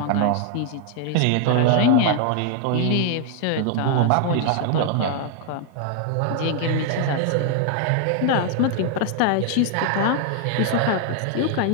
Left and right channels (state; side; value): different; both; correlation 0.00